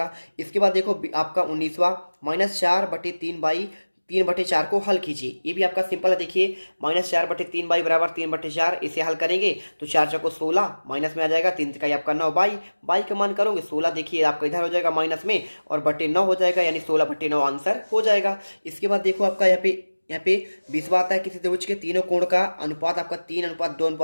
इसके बाद देखो आपका 19वां -4/3/3/4 को हल कीजिए। ये भी आपका सिंपल है। देखिए -4/3 बाई बराबर 3/4, इसे हल करेंगे तो 4 चौको 16, माइनस में आ जाएगा 3 का आपका 9 बाई का मान करोगे 16, देखिए आपका इधर हो जाएगा माइनस में और बटे 9 हो जाएगा, यानी 16/9 आंसर हो जाएगा। इसके बाद देखो आपका यहाँ पे 20वां आता है, किसी त्रिभुज के तीनों कोण का अनुपात आपका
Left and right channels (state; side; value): inverted; both; correlation -1.00